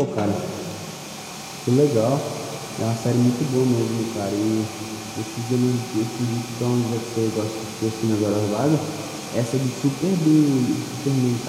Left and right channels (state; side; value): identical; both; correlation 1.00